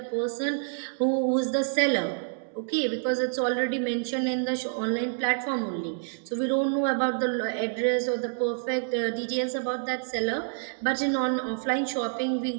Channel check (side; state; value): left; silent; digital silence